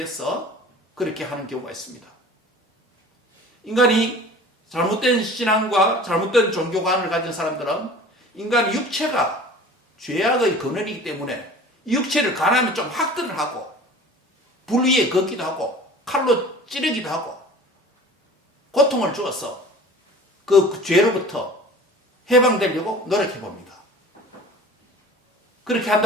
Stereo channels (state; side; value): normal; both; correlation 0.43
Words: 그렇게 하는 경우가 있습니다. 인간이 잘못된 신앙과 잘못된 종교관을 가진 사람들은 인간의 육체가 죄악의 근원이기 때문에 이 육체를 가난하면 좀 학대를 하고 불 위에 걷기도 하고 칼로 찌르기도 하고 고통을 주어서 그 죄로부터 해방되려고 노력해 봅니다. 그렇게